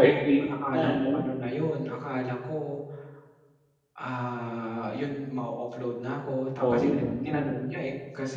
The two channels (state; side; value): identical; both; correlation 1.00